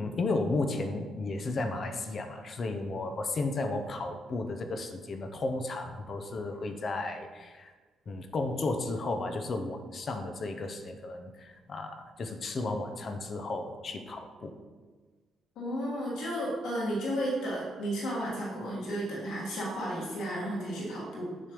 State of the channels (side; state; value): both; normal; correlation 0.79